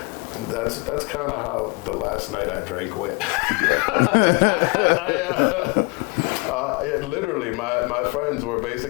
that's kind of how the last night I drank went. Literally, my friends were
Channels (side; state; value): right; quieter; 28.2 dB